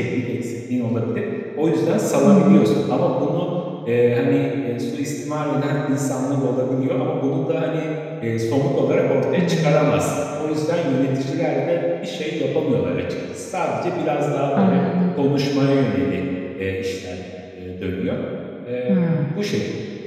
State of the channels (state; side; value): identical; both; correlation 1.00